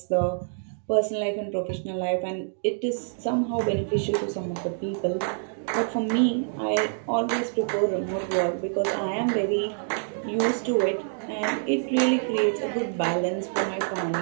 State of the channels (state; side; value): silent; left; digital silence